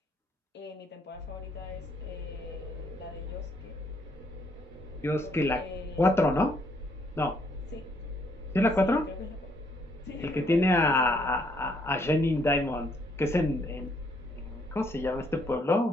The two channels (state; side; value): normal; both; correlation 0.69